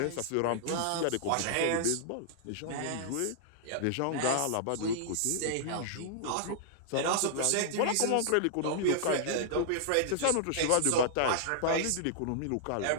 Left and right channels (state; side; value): different; both; correlation -0.01